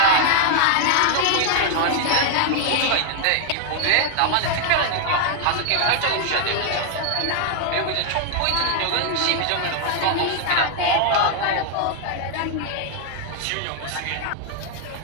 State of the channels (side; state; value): both; different; correlation 0.00